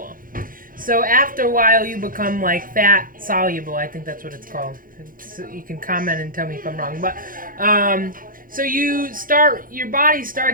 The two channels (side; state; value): left; late; 0.40 ms